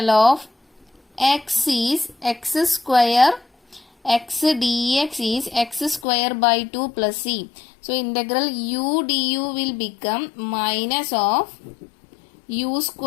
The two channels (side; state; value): right; drops out; at 6.1 s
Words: of x is x square, x dx is x square by 2 plus c. So integral u du will become minus of u